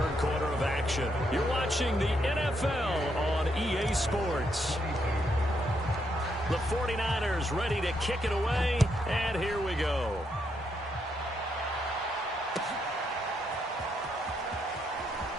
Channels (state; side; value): normal; both; correlation 0.77